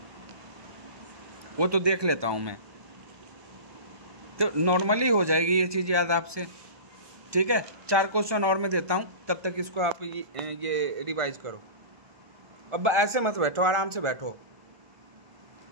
वो तो देख लेता हूँ मैं, तो नॉर्मली हो जाएगी ये चीज़ याद आपसे। ठीक है, 4 क्वेश्चन और मैं देता हूँ, तब तक इसको आप ये रिवाइज करो। अब ऐसे मत बैठो, आराम से बैठो।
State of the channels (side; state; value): left; late; 1.2 ms